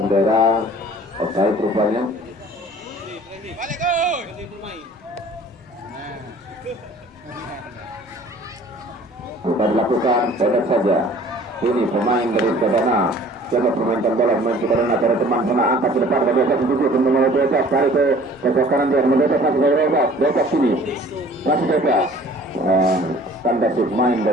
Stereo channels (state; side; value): normal; both; correlation 0.50